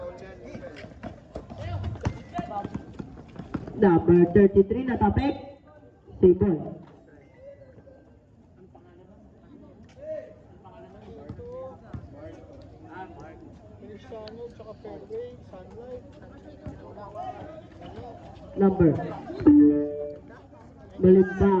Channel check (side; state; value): both; identical; correlation 1.00